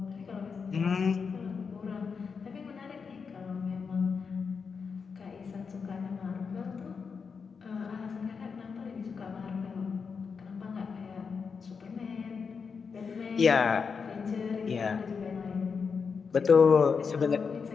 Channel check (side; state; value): right; quieter; 5.6 dB